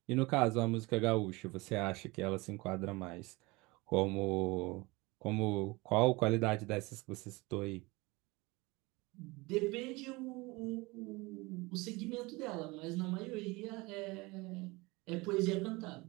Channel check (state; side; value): quieter; left; 23.7 dB